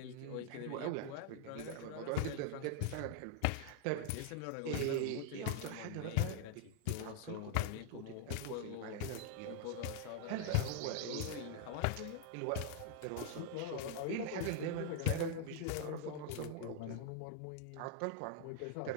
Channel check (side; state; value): both; different; correlation 0.00